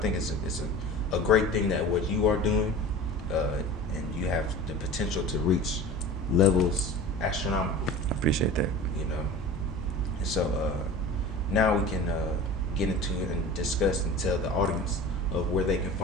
it's a great thing that what you are doing, and you have the potential to reach levels astronomical. I appreciate that. And so now we can get into it and discuss and tell the audience of where they can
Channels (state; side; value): normal; both; correlation 0.37